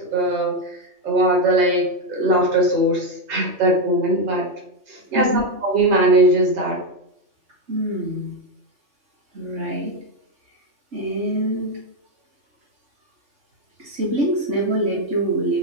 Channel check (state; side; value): late; left; 3.5 ms